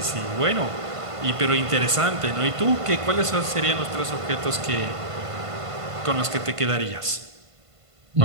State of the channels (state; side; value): late; left; 1.5 ms